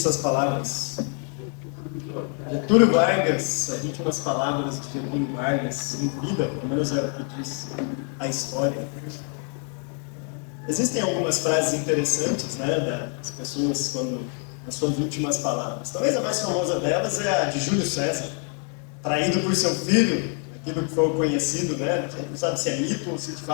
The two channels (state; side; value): quieter; right; 39.6 dB